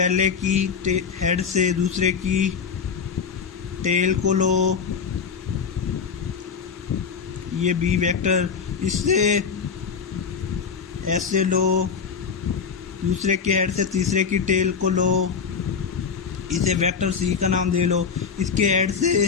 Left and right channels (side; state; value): right; quieter; 6.1 dB